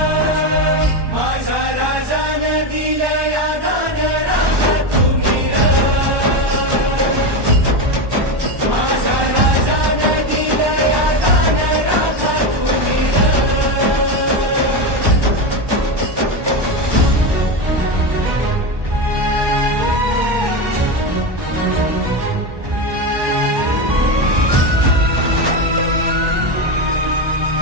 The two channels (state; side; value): late; left; 1.2 ms